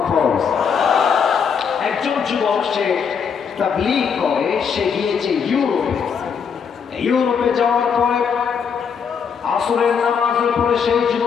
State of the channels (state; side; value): quieter; right; 6.7 dB